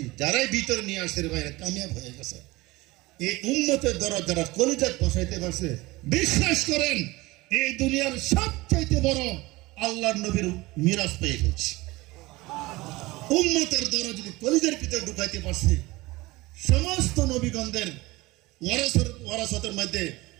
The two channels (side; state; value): left; quieter; 21.0 dB